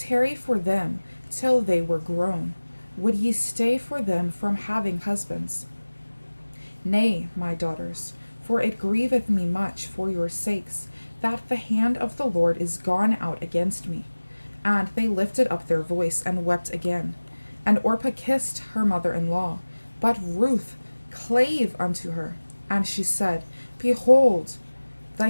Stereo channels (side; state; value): both; inverted; correlation -1.00